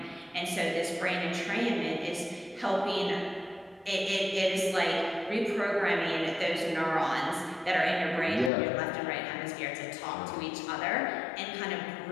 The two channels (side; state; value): right; drops out; at 8.5 s